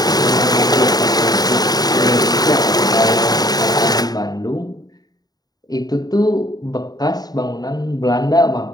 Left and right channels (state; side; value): late; right; 0.19 ms